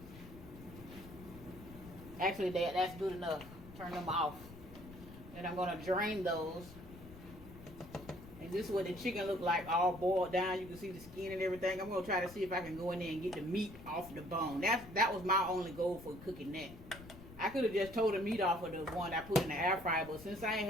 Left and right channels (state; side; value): noise; left; rumble, 17 dB below the sound